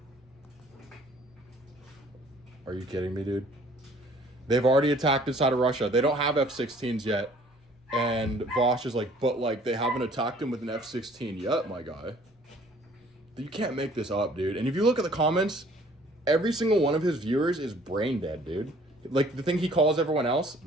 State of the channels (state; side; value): normal; both; correlation 0.56